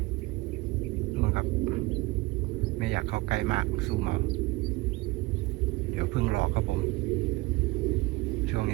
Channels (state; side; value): quieter; left; 22.0 dB